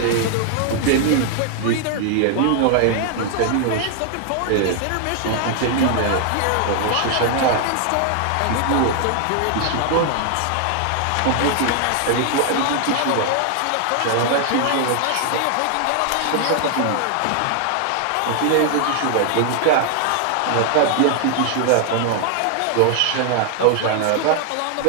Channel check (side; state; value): both; different; correlation 0.00